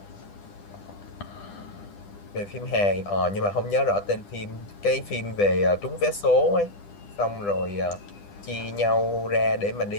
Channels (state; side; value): late; right; 10 ms